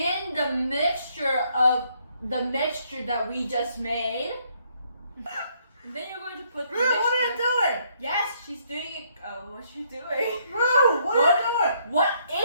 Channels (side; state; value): both; inverted; correlation -0.70